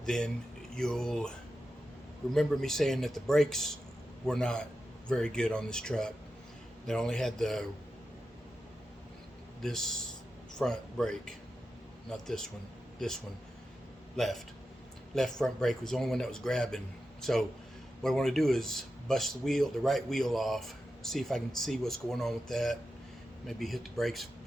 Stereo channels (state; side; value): normal; both; correlation 0.90